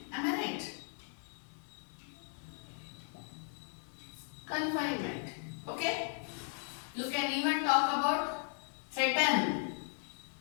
Am I right? Confinement. Okay? You can even talk about threaten,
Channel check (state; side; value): silent; right; 53 dB below the other